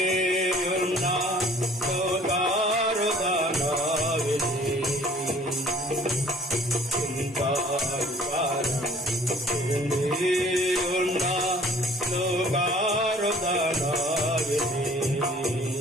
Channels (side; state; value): both; normal; correlation 0.53